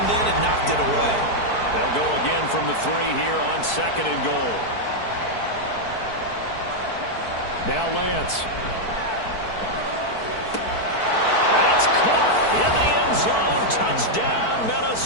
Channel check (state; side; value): late; right; 4.6 ms